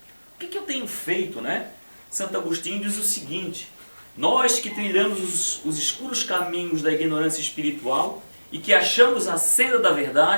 O que eu tenho feito, né? Santo Agostinho diz o seguinte: nós que trilhamos os escuros caminhos da ignorância espiritual e que achamos a senda da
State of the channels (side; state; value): both; inverted; correlation -1.00